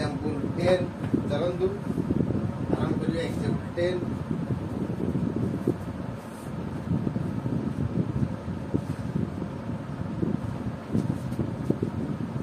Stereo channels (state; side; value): identical; both; correlation 1.00